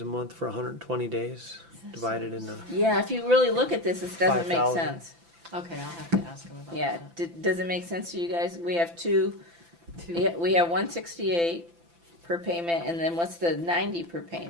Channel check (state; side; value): late; left; 5.9 ms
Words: a month for 120 days, divided into. Yeah, if you really look at this, this doesn't make 5,000. sense. Okay, I'll have to ask him about Yeah, that. does it make sense to you guys? We have two, Two. yeah, we have 168 per payment, and then what's the 90 per